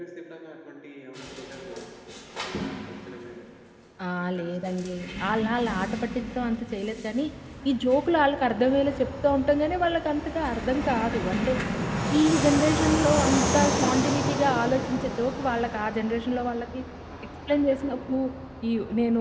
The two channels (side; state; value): both; identical; correlation 1.00